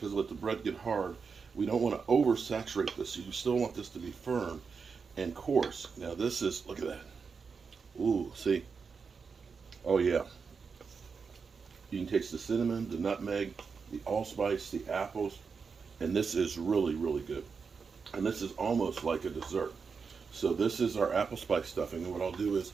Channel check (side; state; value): left; quieter; 5.4 dB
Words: we let the bread get hard, we don't want to oversaturate this. You still want this to be firm and coarse. Now, this is, look at that. Ooh, see? Oh, yeah. You can taste the cinnamon, the nutmeg, the allspice, the apples. And this is really, really good. And this is almost like a dessert. So this is our apple spice stuffing. And what I'll do is